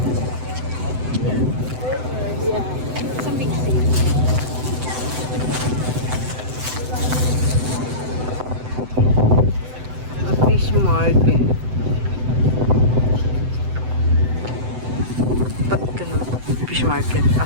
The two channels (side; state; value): left; late; 7.9 ms